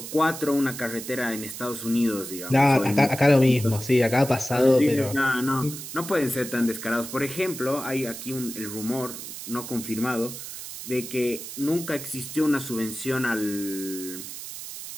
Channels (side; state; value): right; noise; hiss, 10 dB below the sound